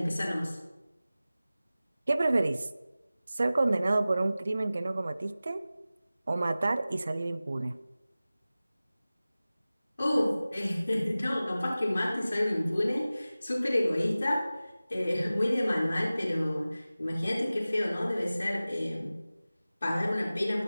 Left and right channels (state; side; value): inverted; both; correlation -0.97